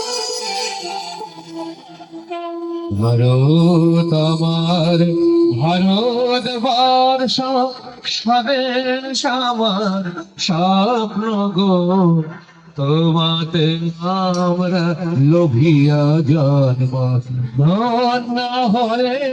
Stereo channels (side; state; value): both; identical; correlation 1.00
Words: ভারত আমার, ভারত বর্ষ, স্বদেশ আমার স্বপ্ন গো, তোমাতে আমরা লোভিয়া জন্ম, ধন্য